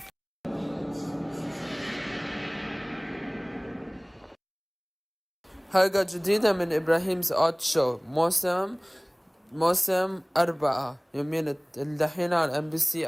حلقة جديدة من إبراهيم's Odd Show موسم 4 يومين الدحين على MBC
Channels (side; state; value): both; identical; correlation 1.00